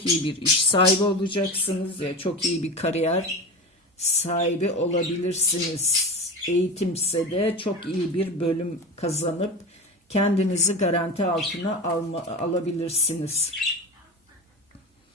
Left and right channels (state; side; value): normal; both; correlation 0.27